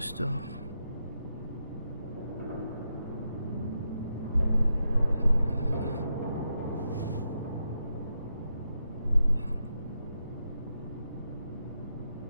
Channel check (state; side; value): inverted; both; correlation -0.84